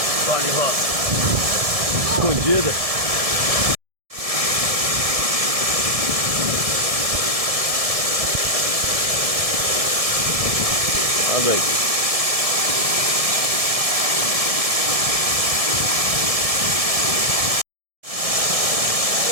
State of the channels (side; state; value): left; late; 1.7 ms